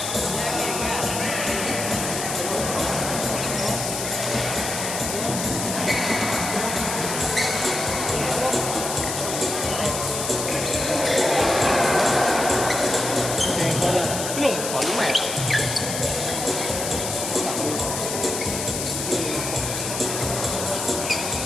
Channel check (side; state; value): left; noise; hiss, 4 dB below the sound